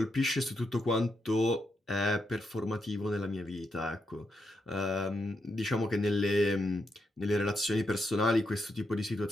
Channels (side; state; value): both; normal; correlation 0.82